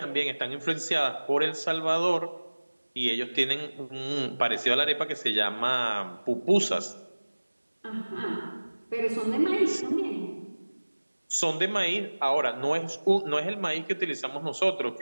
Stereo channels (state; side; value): inverted; both; correlation -1.00